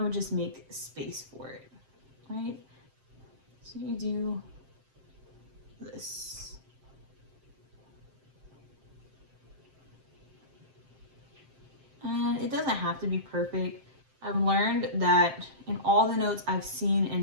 would just make space for it, right? So you do this. And it doesn't have to be perfect. I've learned that in all the notes I've seen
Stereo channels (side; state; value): left; late; 7.5 ms